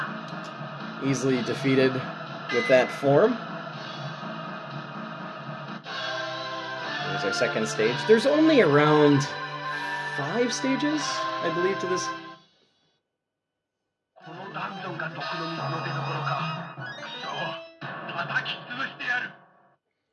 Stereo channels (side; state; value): both; identical; correlation 1.00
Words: easily defeated with that form. Here's our second stage. There's only around 5 stages, I believe, to this.